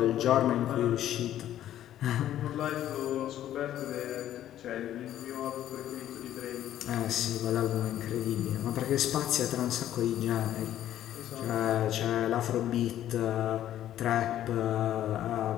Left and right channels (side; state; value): right; quieter; 12.0 dB